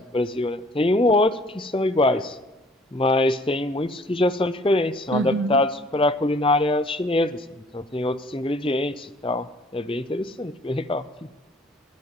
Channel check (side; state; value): both; normal; correlation 0.56